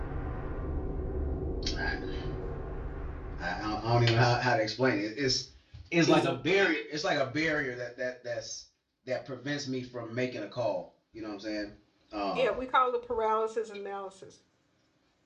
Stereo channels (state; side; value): identical; both; correlation 1.00